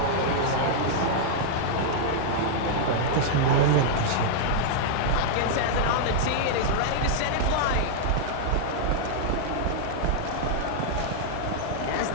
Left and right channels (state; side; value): different; both; correlation -0.02